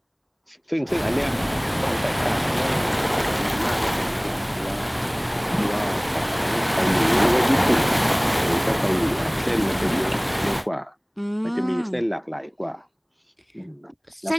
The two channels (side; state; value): both; identical; correlation 1.00